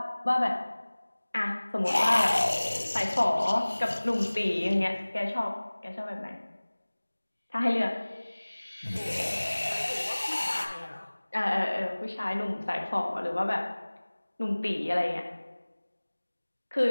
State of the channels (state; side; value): inverted; both; correlation -1.00